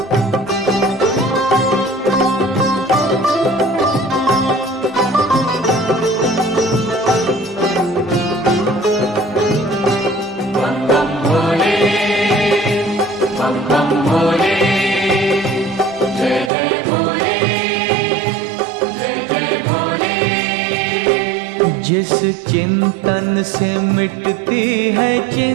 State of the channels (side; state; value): left; drops out; at 16.5 s